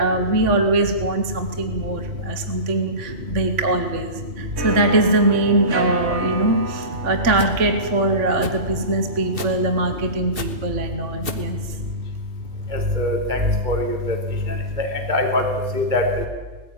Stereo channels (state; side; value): late; left; 2.7 ms